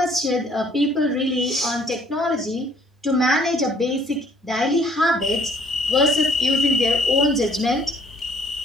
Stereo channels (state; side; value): normal; both; correlation 0.60